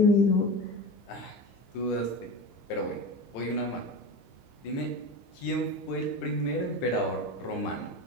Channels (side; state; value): right; late; 15 ms